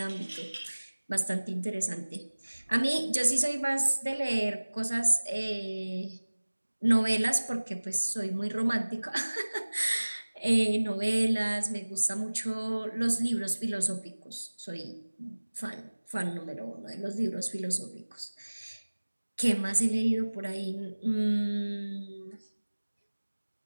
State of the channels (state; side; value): inverted; both; correlation -1.00